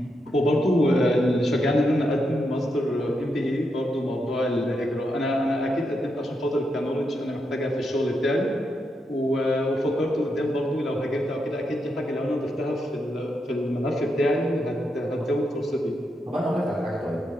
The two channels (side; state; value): both; normal; correlation 0.83